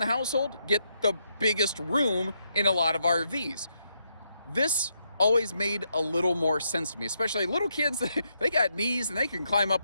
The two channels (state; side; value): inverted; both; correlation -0.79